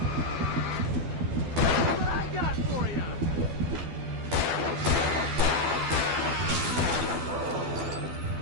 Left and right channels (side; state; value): left; late; 12 ms